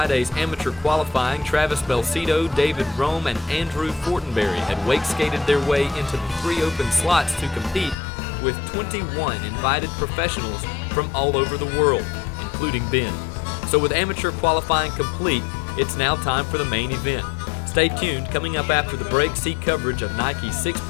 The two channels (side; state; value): right; drops out; at 8.0 s